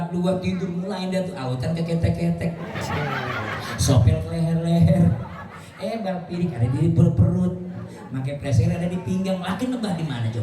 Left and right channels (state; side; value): identical; both; correlation 1.00